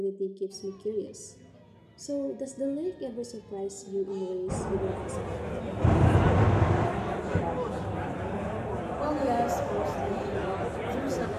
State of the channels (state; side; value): identical; both; correlation 1.00